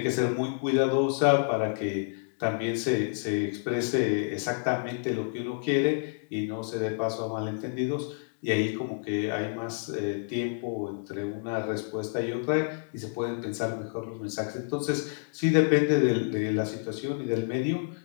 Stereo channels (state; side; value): silent; right; digital silence